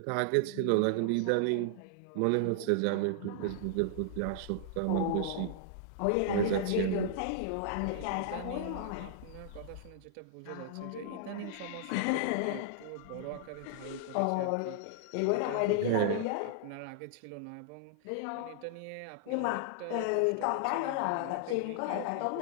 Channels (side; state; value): both; different; correlation -0.01